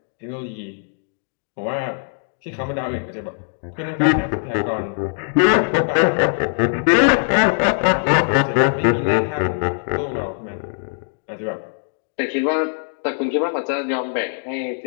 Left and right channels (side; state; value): right; silent; digital silence